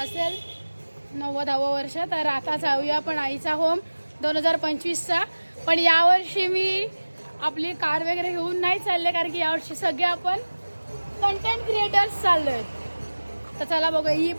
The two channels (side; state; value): both; inverted; correlation -1.00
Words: 90वे वर्ष. तर आता जाऊया पण आईचा होम 2025चा. पण यावर्षी मी आपली कार वगैरे घेऊन नाही चालले कारण की यावर्षी सगळे आपण कंटेंट क्रिएटर्स चाललोय. तर चला बघू. ही